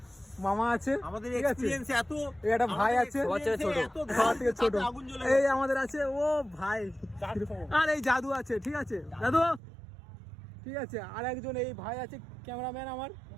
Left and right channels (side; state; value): left; drops out; at 9.6 s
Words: মামা আছে, আমাদের ঠিক আছে? এক্সপেরিয়েন্স এত, এই একটা ভাই আছে, সবার থেকে ছোট। এই আমাদের আছে ও ভাই, আর এই জাদু আছে, ঠিক আছে দাদু, ঠিক আছে? আর একজন এই ভাই আছে, ক্যামেরাম্যান আমার